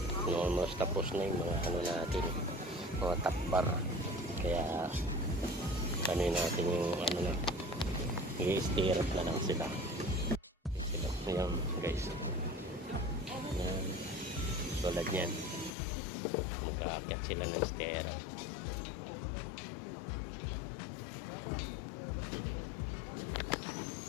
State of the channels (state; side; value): drops out; right; at 15.7 s